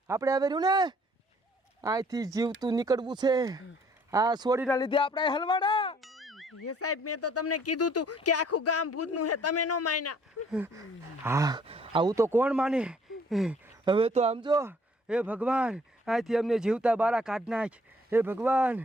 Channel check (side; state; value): both; normal; correlation 0.60